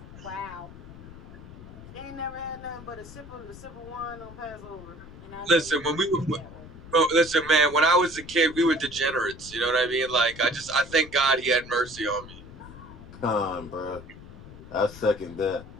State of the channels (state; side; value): noise; left; rumble, 16 dB below the sound